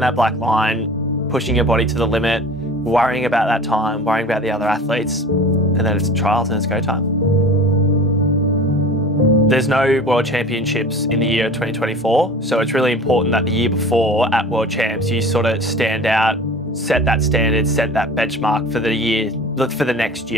black line, pushing your body to the limit, worrying about that time, worrying about the other athletes, and then it's trials and it's go time. There's no World Championships in the year 2024, so it's really important that the year before at World Champs, you sort of stand out, set that standard, set that benchmark for the year, for the next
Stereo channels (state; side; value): normal; both; correlation 0.39